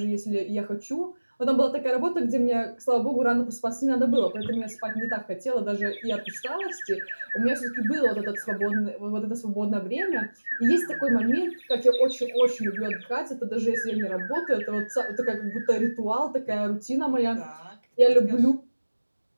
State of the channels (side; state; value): both; inverted; correlation -1.00